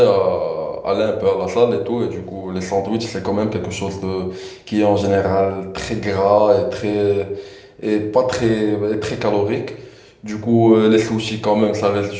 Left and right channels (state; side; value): identical; both; correlation 1.00